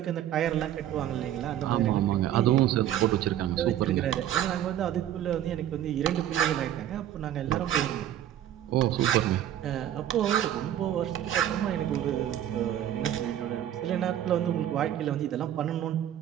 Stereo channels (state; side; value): quieter; left; 11.4 dB